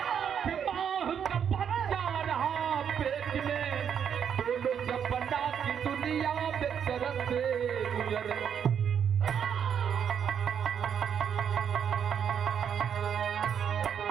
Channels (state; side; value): quieter; left; 8.1 dB